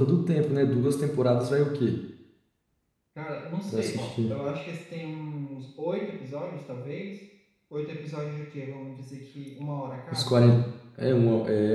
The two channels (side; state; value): both; identical; correlation 1.00